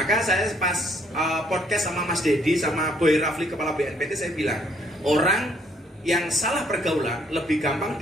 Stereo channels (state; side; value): normal; both; correlation 0.66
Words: saya pas podcast sama Mas Dedi sama Boy Rafli kepala BNPT, saya bilang orang yang salah pergaulan lebih gampang